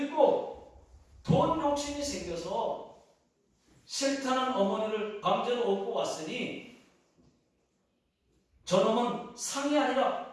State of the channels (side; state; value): both; identical; correlation 1.00